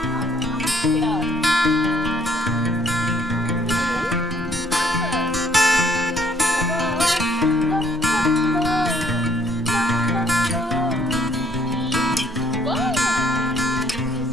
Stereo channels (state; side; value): normal; both; correlation 0.64